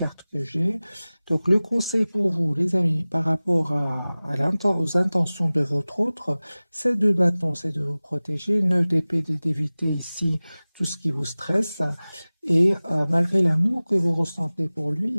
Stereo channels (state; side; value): inverted; both; correlation -0.98